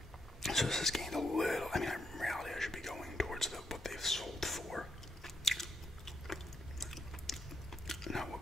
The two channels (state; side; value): normal; both; correlation 0.79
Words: So this has gained a little. I mean, in reality, I should be going towards what they've sold for, not what